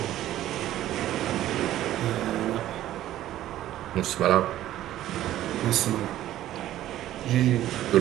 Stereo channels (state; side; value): quieter; left; 13.4 dB